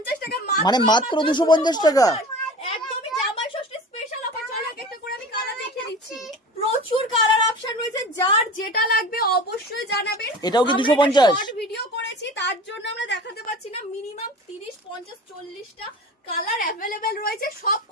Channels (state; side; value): normal; both; correlation 0.37